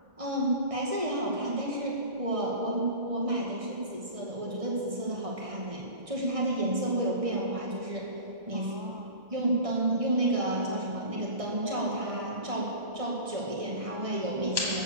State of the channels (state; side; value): late; left; 1.6 ms